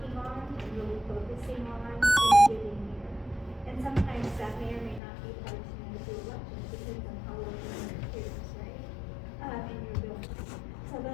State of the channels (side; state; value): right; drops out; at 5.0 s